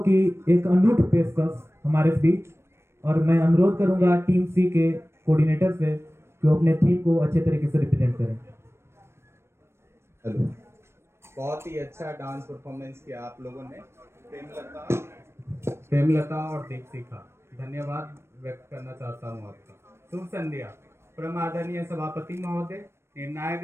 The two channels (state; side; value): late; left; 0.12 ms